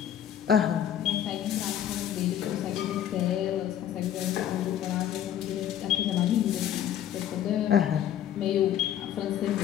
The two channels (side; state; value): right; quieter; 10.5 dB